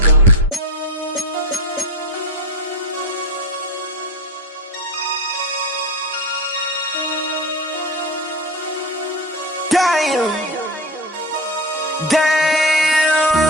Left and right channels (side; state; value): both; normal; correlation 0.22